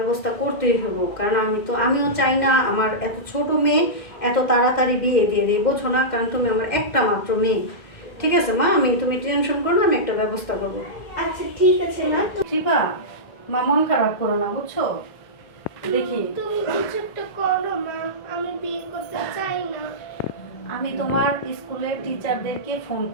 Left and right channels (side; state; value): right; late; 2.1 ms